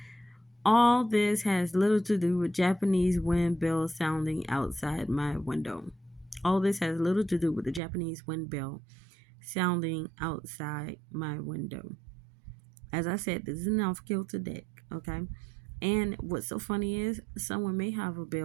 All this has little to do with Japanese wind bells sounding outside my window. All this has little to do with the Japanese wind bell sounding outside my window. As I said, this is an off kilter deck, okay? And what's so funny is someone may have a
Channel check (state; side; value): drops out; left; at 7.8 s